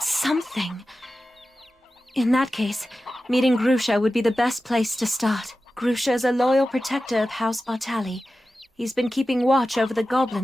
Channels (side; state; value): both; normal; correlation 0.94